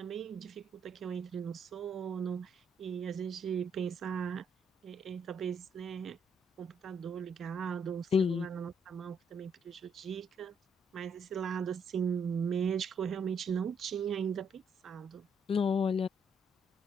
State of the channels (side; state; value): both; normal; correlation 0.72